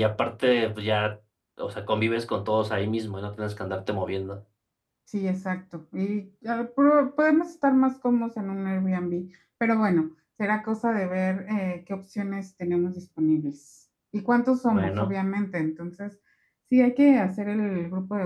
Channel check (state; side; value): identical; both; correlation 1.00